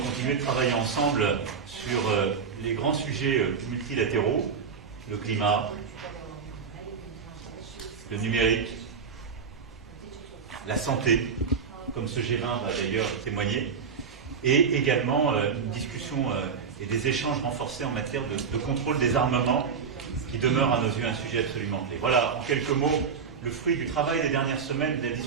continuer de travailler ensemble sur les grands sujets multilatéraux, le climat, le numérique, la santé, comme ce G20 va d'ailleurs témoigner, et également une discussion et des échanges renforcés en matière de contrôle des armements, qui demeure à nos yeux un sujet absolument clé. Voilà, en quelques mots, le fruit du travail des dernières semaines, des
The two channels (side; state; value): left; quieter; 6.1 dB